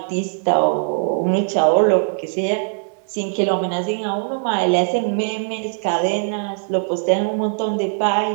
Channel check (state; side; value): silent; left; digital silence